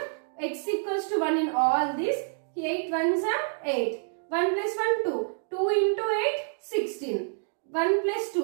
x equals to 1 in all this, 8 ones are 8. 1 plus 1 2. 2 into 8 16. 1 plus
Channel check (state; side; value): silent; left; digital silence